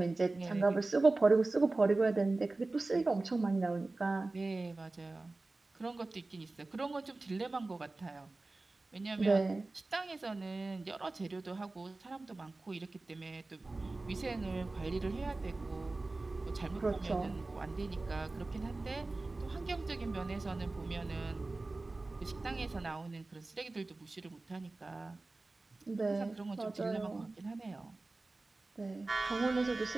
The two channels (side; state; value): left; quieter; 3.2 dB